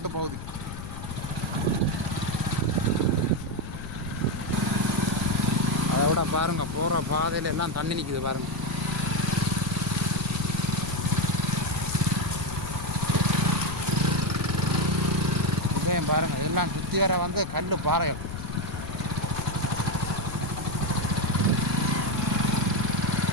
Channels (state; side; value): noise; left; rumble, 9 dB below the sound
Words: பகுதி. அதை விட பாருங்கள் போகிற பாதையில் எல்லாம் தண்ணி நிற்குது பாருங்கள். பாருங்கள் எல்லாம் சுற்றி வர வந்து கல் பாறைகள்.